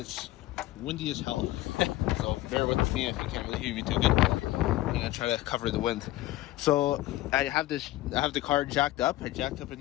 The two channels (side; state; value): right; quieter; 16.4 dB